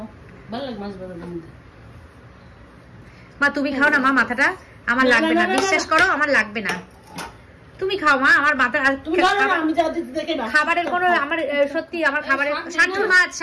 ভালো লাগে মাছ ভাজার মধ্যে। মা তুমি খাও না মা, মাথাটা আমার লাগবে না, বিশ্বাস করো আমার লাগবে না। তুমি খাও মা, আমার মাথা খাবারের কোনো আমার সত্যি আমার খাবারের।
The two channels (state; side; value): identical; both; correlation 1.00